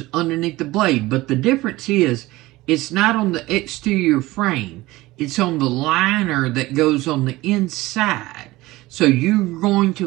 underneath the blade, but the difference is it's not on the exterior frame. It's on the liner that goes on the inside. So you're going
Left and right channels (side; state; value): left; quieter; 19.0 dB